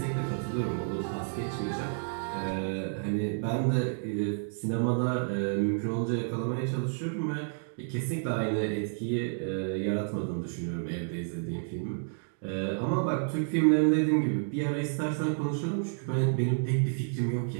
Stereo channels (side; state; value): left; silent; digital silence